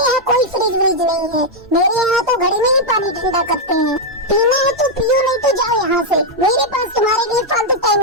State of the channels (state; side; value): normal; both; correlation -0.02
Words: यहाँ कोई फ्रिज व्रिज नहीं है। मेरे यहाँ तो घड़े में ही पानी ठंडा करते हैं। पीना है तो पियो, नहीं तो जाओ यहाँ से। मेरे पास तुम्हारे लिए फालतू